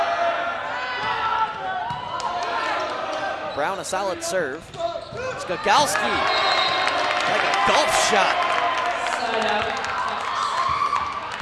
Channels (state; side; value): identical; both; correlation 1.00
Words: Brown, a solid serve. Skakowski, like a golf shot.